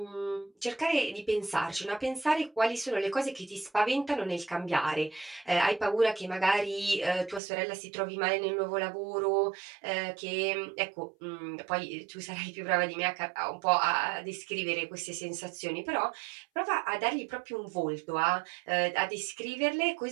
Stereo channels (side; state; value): left; drops out; at 7.4 s